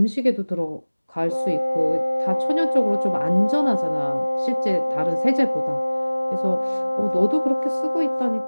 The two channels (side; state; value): both; inverted; correlation -1.00